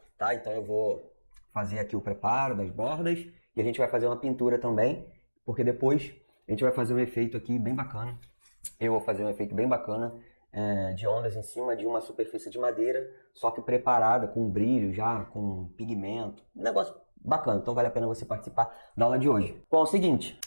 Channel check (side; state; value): both; inverted; correlation -1.00